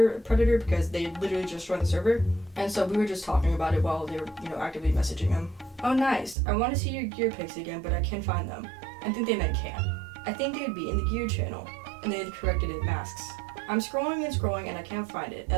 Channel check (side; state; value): left; drops out; at 6.4 s